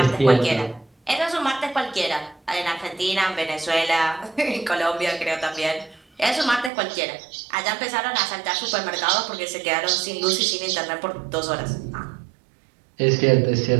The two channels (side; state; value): left; drops out; at 6.7 s